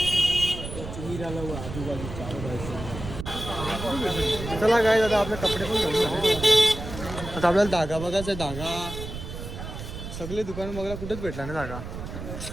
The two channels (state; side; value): noise; right; rumble, 9 dB below the sound